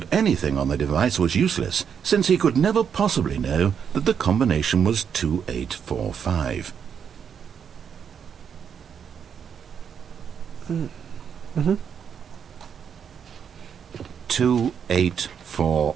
anything on the device was useless, since he could never possibly know that the combination was 2845. Mm-hmm.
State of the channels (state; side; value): quieter; left; 7.5 dB